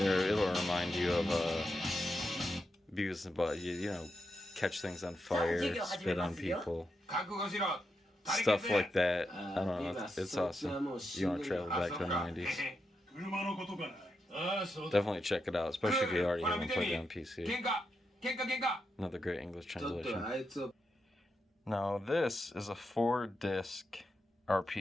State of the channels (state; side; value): normal; both; correlation 0.85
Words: remind you of Beavis and Butthead. You know, catch things on fire, spit on people, stuff like that. I don't know. It's awesome. You want to travel back to the 90s. Definitely check it out, especially if you already haven't played it on PC. Another great English translation. Now this is a 4-disc